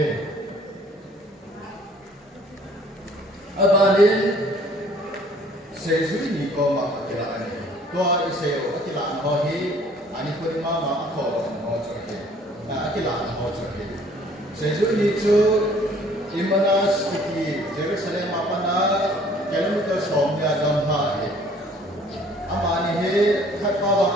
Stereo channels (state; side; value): normal; both; correlation 0.56